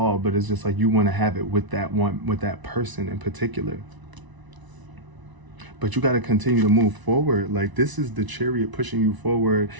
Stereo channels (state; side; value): late; left; 1.0 ms